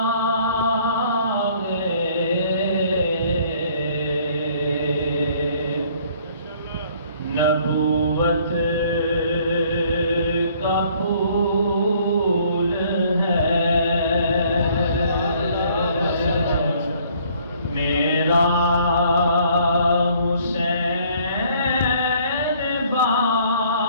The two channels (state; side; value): inverted; both; correlation -0.60